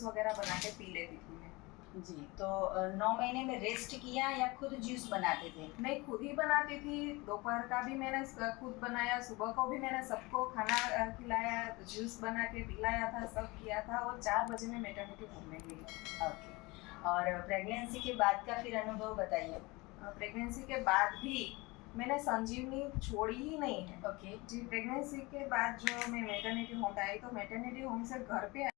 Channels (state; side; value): quieter; right; 23.8 dB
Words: वगैरह बना के पी लेती थी मैं। जी। तो 9 महीने में रेस्ट किया या खुद जूस बनाते थे? मैं खुद ही बनाती थी। दोपहर का भी मैंने खुद बनाया, सुबह को भी मैंने सबको खाना खिलाया, जूस बना के पिलाया था, सब किया था और 4 बजे में मैटरनिटी होम में गई। ओके। और प्रेगनेंसी के बाद का फिर अनुभव बताइए। प्रेगनेंसी के बाद भी मैंने संजीवनी छोड़ी ही नहीं है। ओके जी। प्रेगनेंसी के बाद जो मैं मैटरनिटी होम आई तो मैटरनिटी होम से घर पे